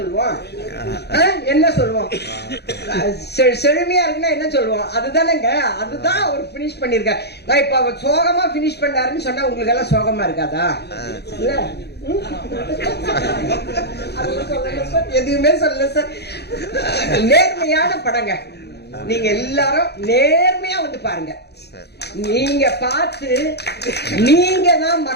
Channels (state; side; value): late; right; 0.48 ms